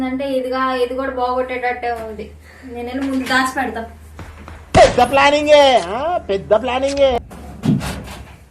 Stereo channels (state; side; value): identical; both; correlation 1.00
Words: ఇది కూడా బాగొట్టేటట్టే ఉంది. నేను ముందు దాచి పెడతాం. పెద్ద ప్లానింగే.